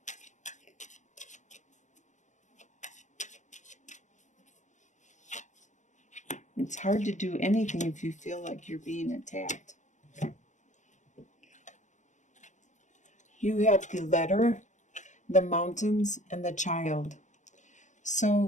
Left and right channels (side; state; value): right; late; 0.35 ms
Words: It's hard to do anything if you feel like you're being attacked. You have the letter, the mountains, and the child.